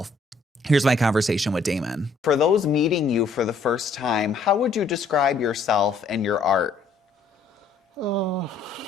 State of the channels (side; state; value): right; quieter; 3.8 dB